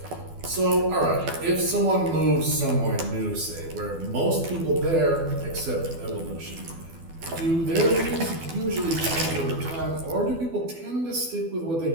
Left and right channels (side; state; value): left; late; 12 ms